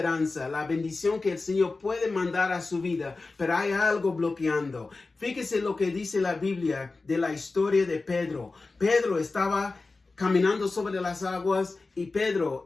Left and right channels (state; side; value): quieter; right; 3.7 dB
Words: la bendición que el Señor puede mandar a su vida, pero hay algo bloqueando. Fíjese lo que dice la Biblia de la historia de Pedro. Pedro estaba caminando sobre las aguas y Pedro